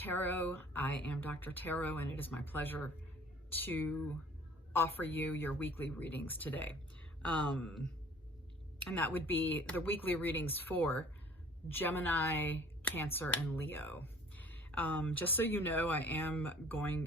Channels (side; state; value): both; normal; correlation 0.51